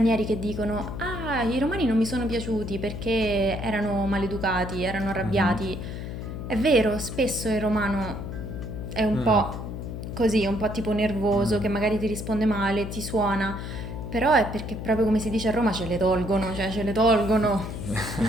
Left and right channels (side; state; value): left; noise; hum, 7 dB below the sound